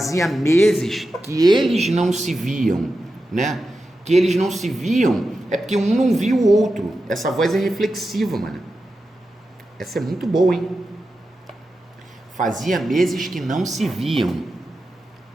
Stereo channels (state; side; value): normal; both; correlation 0.91